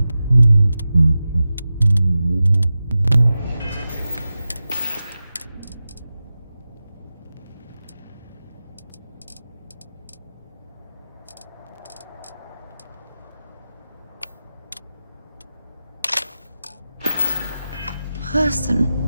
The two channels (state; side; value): inverted; both; correlation -0.94